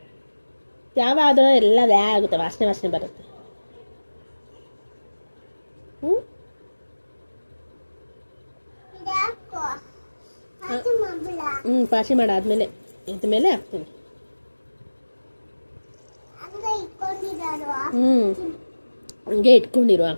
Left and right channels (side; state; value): both; inverted; correlation -1.00